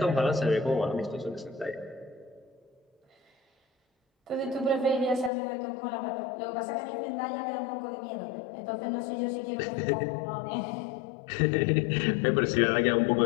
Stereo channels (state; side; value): drops out; right; at 5.3 s